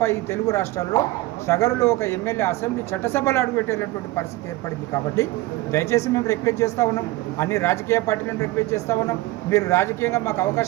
ఈ తెలుగు రాష్ట్రాల్లో సగరులో ఒక ఎమ్మెల్యే అసెంబ్లీ చట్టసభలు అడుగుపెట్టేటటువంటి పరిస్థితి ఏర్పడింది. కాబట్టి దయచేసి మేము రిక్వెస్ట్ చేస్తూ ఉన్నాం, అన్ని రాజకీయ పార్టీలను రిక్వెస్ట్ చేస్తూ ఉన్నాం, మీరు రాజకీయంగా మాకు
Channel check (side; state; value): left; quieter; 18.8 dB